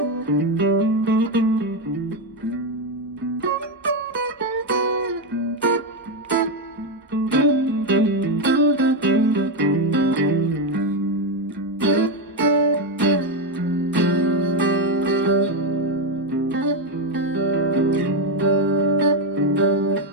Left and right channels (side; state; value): both; normal; correlation 0.07